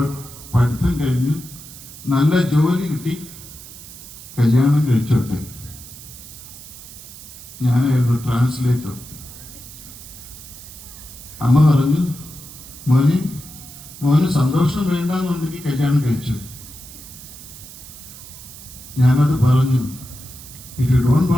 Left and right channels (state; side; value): noise; right; hiss, 16 dB below the sound